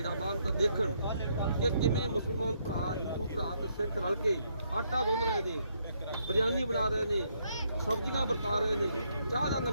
ਬਾਹਰ ਤਾਂ ਦੇਖਣ ਕਿ ਕਿਵੇਂ ਮੁਸਲਮਾਨ ਭਰਾ, ਹਿੰਦੂ ਭਰਾ ਤੇ ਸਿੱਖ ਰਲ ਕੇ ਆਟਾ ਗੁੰਨ ਰਹੇ ਨੇ, ਬਿਰਿਆਨੀ ਬਣਾ ਰਹੇ ਨੇ, ਸਬਜ਼ੀਆਂ ਵਰਤਾ ਰਹੇ ਨੇ, ਚਾਹ ਦਾ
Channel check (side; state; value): both; inverted; correlation -0.73